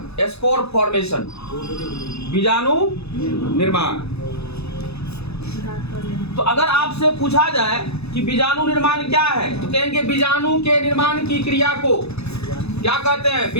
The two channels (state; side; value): late; right; 0.79 ms